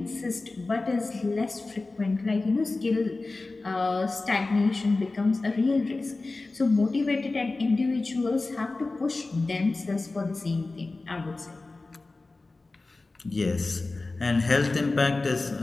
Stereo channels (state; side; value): quieter; right; 3.4 dB